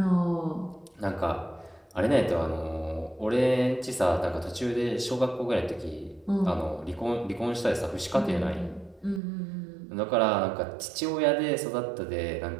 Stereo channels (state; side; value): drops out; left; at 9.2 s